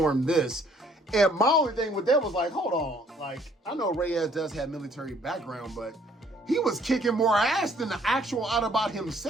this. And my only thing with that was like, hold on. Like, I know Reyes does have military background, but he was kicking more ass than the actual Autobot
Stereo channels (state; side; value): normal; both; correlation 0.61